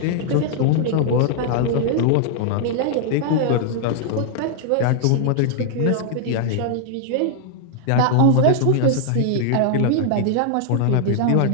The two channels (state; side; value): different; both; correlation -0.01